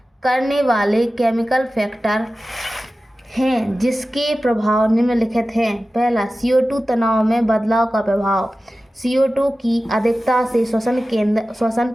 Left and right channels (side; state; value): both; normal; correlation 0.95